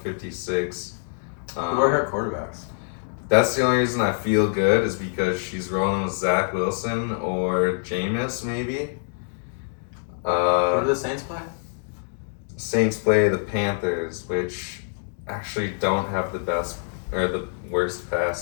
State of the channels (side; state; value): right; silent; digital silence